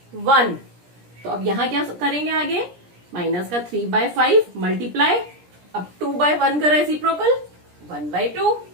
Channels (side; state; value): left; late; 17 ms